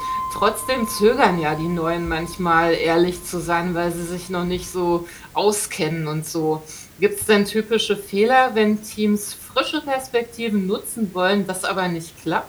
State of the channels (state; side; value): identical; both; correlation 1.00